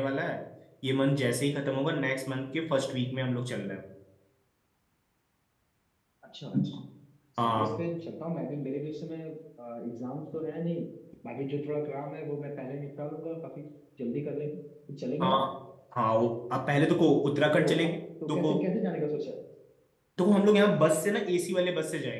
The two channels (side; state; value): both; identical; correlation 1.00